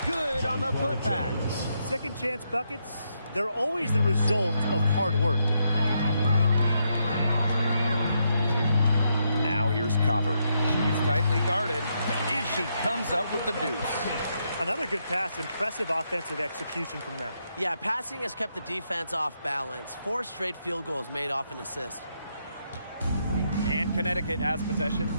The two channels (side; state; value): both; inverted; correlation -0.79